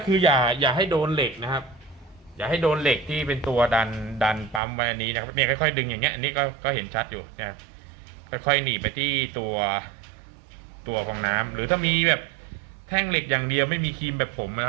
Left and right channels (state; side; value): drops out; left; at 4.6 s